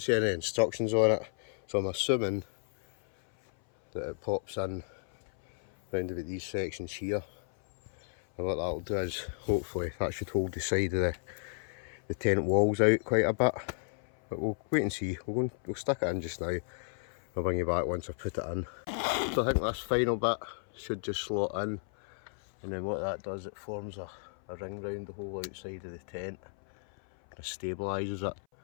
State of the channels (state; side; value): silent; right; 56 dB below the other